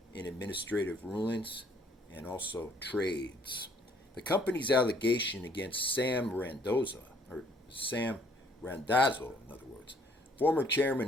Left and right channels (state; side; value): normal; both; correlation 0.62